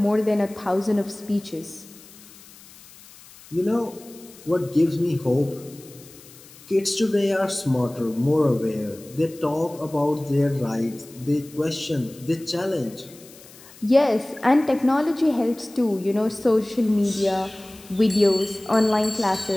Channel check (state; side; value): noise; left; hiss, 22 dB below the sound